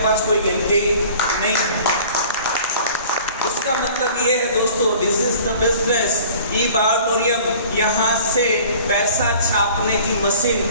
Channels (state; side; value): inverted; both; correlation -0.47